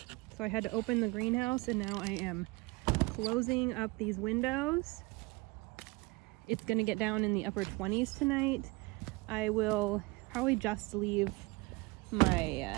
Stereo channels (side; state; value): left; quieter; 24.2 dB